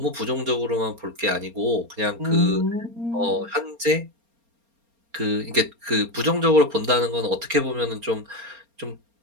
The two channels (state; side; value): late; left; 4.3 ms